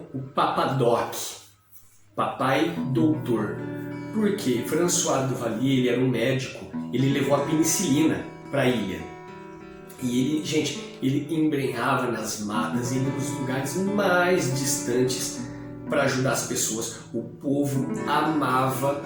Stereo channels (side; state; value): both; identical; correlation 1.00